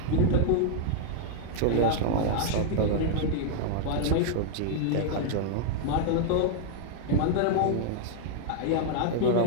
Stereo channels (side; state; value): both; different; correlation -0.01